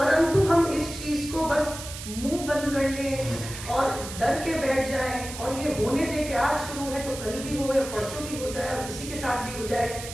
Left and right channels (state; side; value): noise; right; hiss, 10 dB below the sound